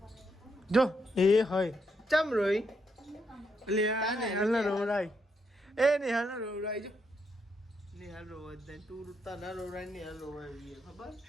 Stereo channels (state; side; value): normal; both; correlation 0.79